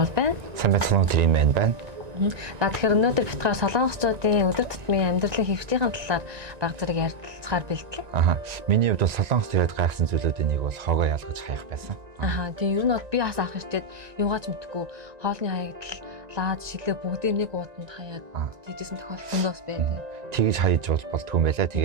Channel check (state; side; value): late; left; 1.9 ms